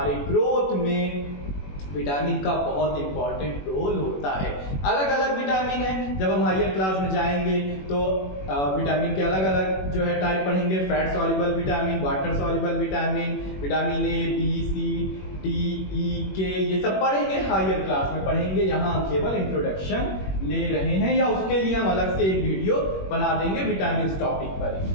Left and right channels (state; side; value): late; right; 21 ms